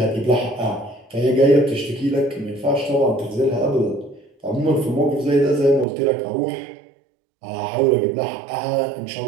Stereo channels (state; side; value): drops out; left; at 5.9 s